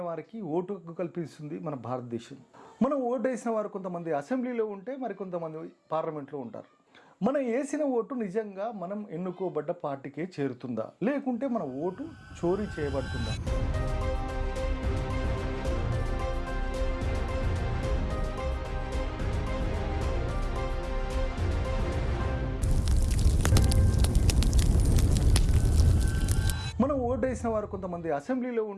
వారికి ఓటు హక్కు కల్పిస్తుంది మన భారతదేశం. మనం ఓటు వేసిన వారు కొంతమంది అసెంబ్లీలో ఉంటే మరికొంతమంది పార్లమెంట్లో ఉంటారు. మనం వేసిన ఓటు నిజంగా మనం ఎన్నుకోబడ్డ పార్టీకే చేరుతుందా, లేకుంటే మన ఓటు చోరీ చేయబడుతుందా? మనం ఓటు వేసిన వారు కొంతమంది అసెంబ్లీలో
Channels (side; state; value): both; identical; correlation 1.00